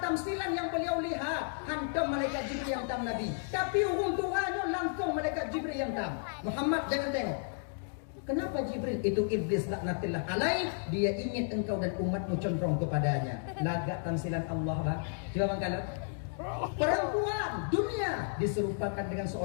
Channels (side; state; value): right; silent; digital silence